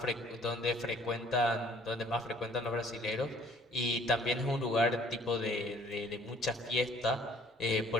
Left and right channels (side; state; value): both; normal; correlation 0.57